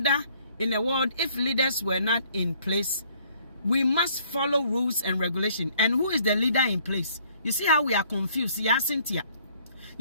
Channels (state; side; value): inverted; both; correlation -0.62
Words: in the world if leaders were not in place. We must follow rules and regulation. And who is the leader in place? You see how we are confused. Yeah, Cynthia.